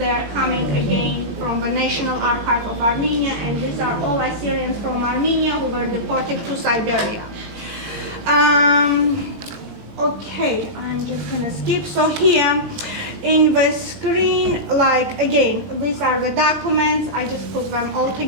are coming again from the National Archive of Armenia, and these are all Assyrians from Armenia who were deported to Siberia. Okay, I'm just gonna skip. So here in the screen, like again, these are the documents. I just put them all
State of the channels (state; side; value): late; left; 20 ms